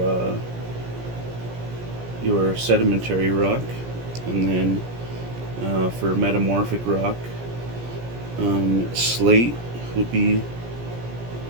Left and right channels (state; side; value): late; left; 17 ms